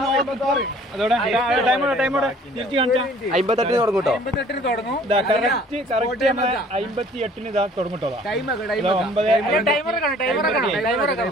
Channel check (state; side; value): normal; both; correlation 0.54